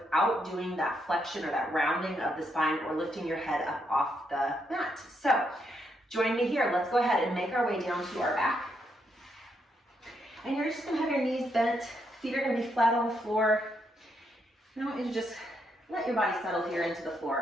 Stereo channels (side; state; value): both; normal; correlation 0.78